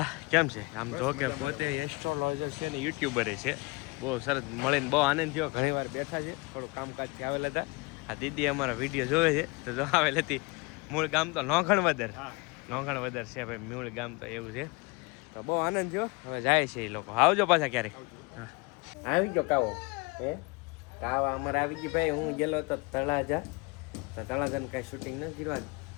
કેમ છે આમ જો કે પોતે એસ્ટ્રોલોજર છે ને યુટ્યુબરે છે બહુ સરસ મળીને બહુ આનંદ થયો ઘણી વાર બેઠા છે થોડું કામકાજથી આવેલા હતા આ દીદી અમારા વિડીયો જોવે છે તો જો આવેલી હતી મૂળ ગામ તો લોખણ વધર છે ભાઈ મૂળ ગામ તો એવું છે તો બહુ આનંદ થયો હવે જાય છે એ લોકો આવજો પાછા ક્યારેક હા આવી ગયો કાવો હે કાવા અમારે આવી ગઈ ભાઈ હું ગયેલો હતો તળાજાને કાંઈ શૂટિંગ ન કરવા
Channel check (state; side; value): quieter; right; 27.5 dB